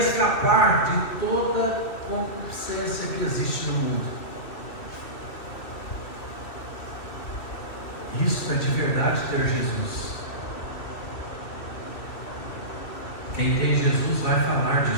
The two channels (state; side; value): late; right; 2.6 ms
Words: de toda concupiscência que existe no mundo. Isso é de verdade ter Jesus. Quem tem Jesus vai falar